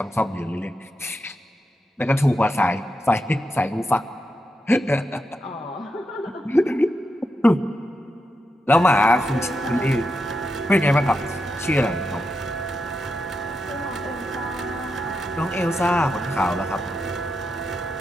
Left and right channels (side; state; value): both; normal; correlation 0.85